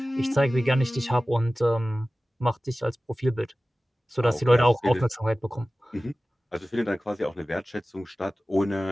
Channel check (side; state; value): both; normal; correlation 0.97